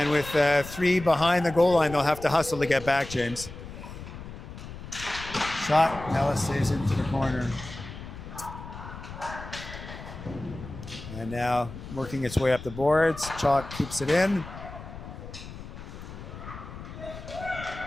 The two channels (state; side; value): noise; left; rumble, 12 dB below the sound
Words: with 3 behind the goal line, they'll have to hustle to get back, James. Shot, Nellis saves into the corner. And now working its way up the boards. Chalk keeps it in.